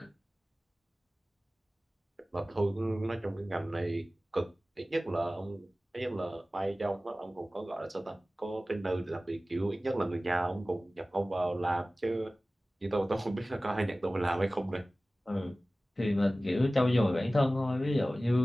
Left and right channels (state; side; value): normal; both; correlation 0.97